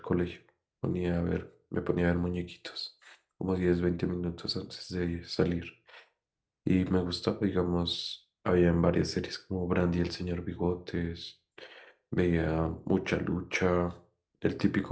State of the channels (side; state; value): both; identical; correlation 1.00